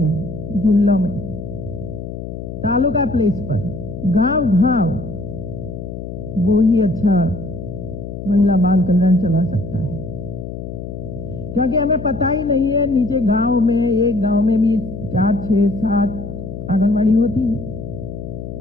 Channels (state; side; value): noise; left; hum, 9 dB below the sound